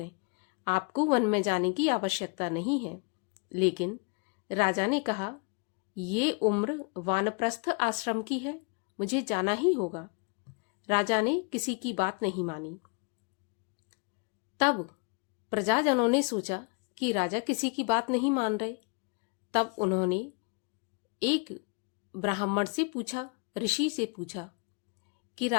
आपको वन में जाने की आवश्यकता नहीं है। लेकिन राजा ने कहा, ये उम्र वानप्रस्थ आश्रम की है, मुझे जाना ही होगा। राजा ने किसी की बात नहीं मानी। तब प्रजाजनों ने सोचा कि राजा किसी की बात नहीं मान रहे। तब उन्होंने एक ब्राह्मण से पूछा, ऋषि से पूछा कि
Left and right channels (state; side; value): quieter; right; 34.2 dB